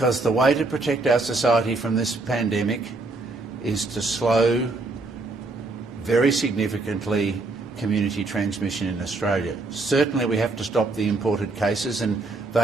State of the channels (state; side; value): quieter; left; 3.4 dB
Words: the way to protect our society from this pandemic is to slow very significantly community transmission in Australia. Certainly we have to stop the imported cases and